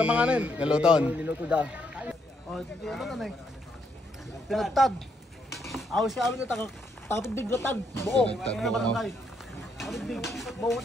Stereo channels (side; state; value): both; normal; correlation 0.75